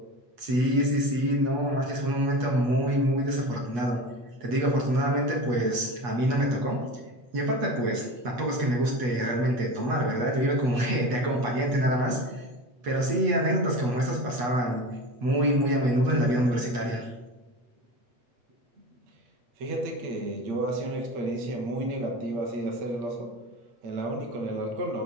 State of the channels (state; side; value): late; left; 8.2 ms